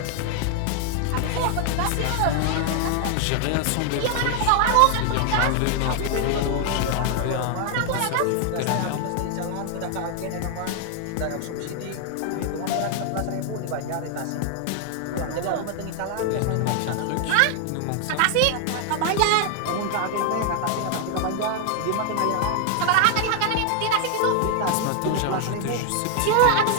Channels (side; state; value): both; different; correlation 0.00